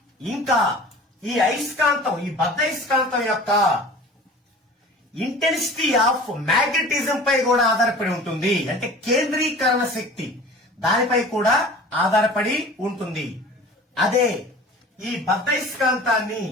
ఇంకా ఈ అయస్కాంతం, ఈ బద్ధయస్కాంతం యొక్క ఇంటెన్సిటీ ఆఫ్ మ్యాగ్నెటిజం పై కూడా ఆధారపడి ఉంటుంది. అంటే కేంద్రీకరణ శక్తి దానిపై కూడా ఆధారపడి ఉంటుంది. అదే ఈ బద్ధయస్కాంతాన్ని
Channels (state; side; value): normal; both; correlation 0.42